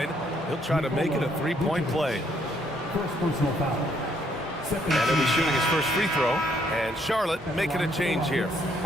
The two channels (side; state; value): both; normal; correlation 0.70